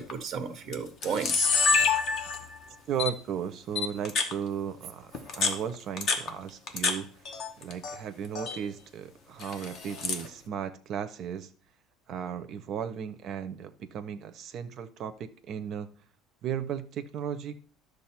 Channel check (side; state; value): both; normal; correlation 0.49